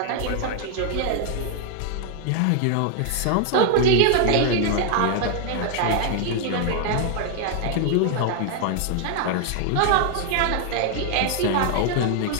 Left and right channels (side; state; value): both; different; correlation 0.00